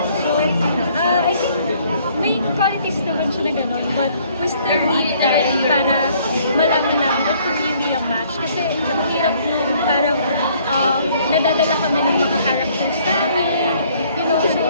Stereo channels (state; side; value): inverted; both; correlation -0.62